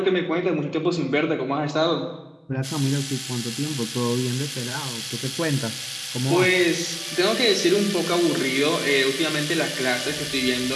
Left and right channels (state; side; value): identical; both; correlation 1.00